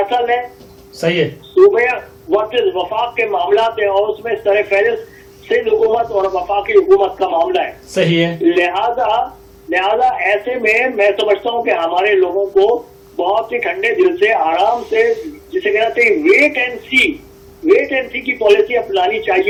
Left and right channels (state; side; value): identical; both; correlation 1.00